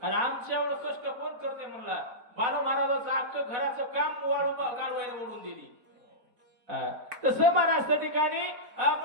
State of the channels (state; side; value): late; left; 4.4 ms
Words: आणि आमच्या एवढं कष्ट कोण करते म्हणला. बालू महाराजाचं अख्खं घराचं काम गाढवायला ओढून दिली. तसं महाराज त्या ठिकाणी